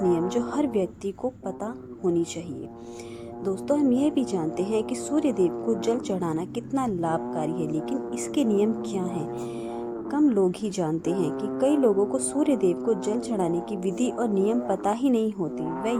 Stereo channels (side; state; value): both; identical; correlation 1.00